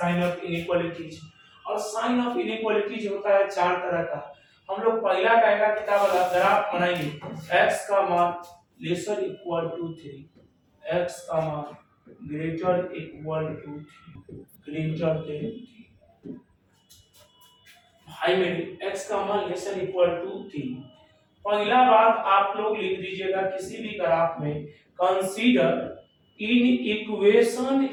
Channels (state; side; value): identical; both; correlation 1.00